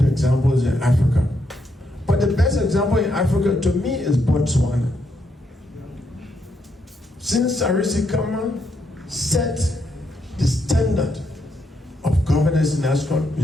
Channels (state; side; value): normal; both; correlation 0.78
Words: examples in Africa. But the best example in Africa to me is Botswana. Since Sarisi Kama set standard of governance in